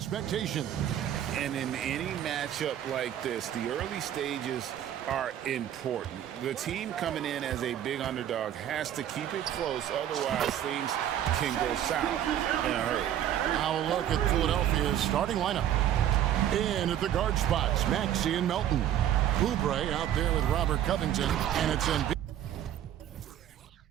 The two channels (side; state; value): left; quieter; 11.0 dB